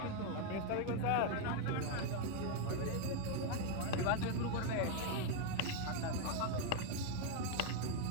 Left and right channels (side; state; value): both; different; correlation 0.01